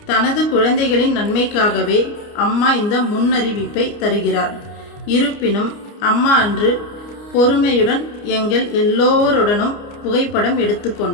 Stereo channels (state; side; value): late; right; 29 ms